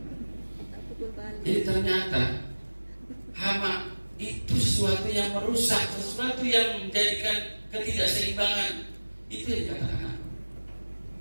Jadi ternyata hama itu sesuatu yang merusak, sesuatu yang menjadikan ketidakseimbangan. Itu yang dikatakan.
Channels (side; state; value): both; inverted; correlation -1.00